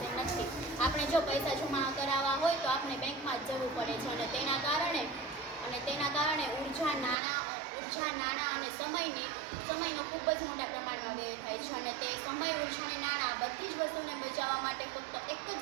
નથી। આપણે જો પૈસા જમા કરાવવા હોય તો આપણે બેંકમાં જ જવું પડે છે, અને તેના કારણે ઉર્જા, નાણાં અને સમયનો ખૂબ જ મોટા પ્રમાણમાં વ્યય થાય છે, અને તે સમય, ઉર્જા અને નાણાં બધી જ વસ્તુને બચાવવા માટે ફક્ત એક જ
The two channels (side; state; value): left; drops out; at 7.2 s